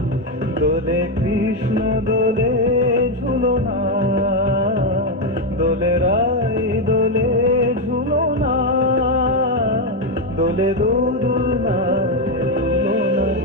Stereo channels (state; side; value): normal; both; correlation 0.06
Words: দোলে কৃষ্ণ দোলে ঝুলনা, দোলে রাই দোলে ঝুলনা, দোলে দোদুল না